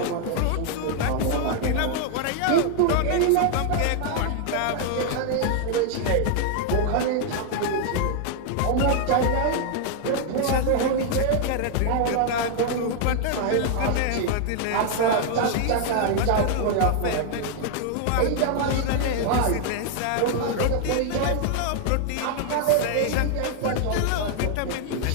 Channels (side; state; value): both; different; correlation 0.00